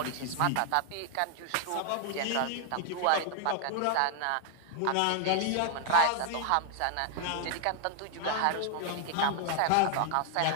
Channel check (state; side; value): different; both; correlation 0.00